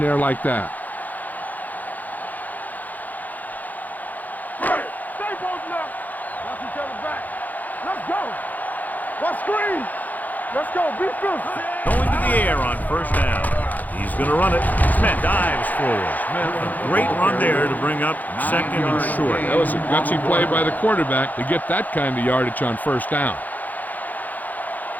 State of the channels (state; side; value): late; right; 0.082 ms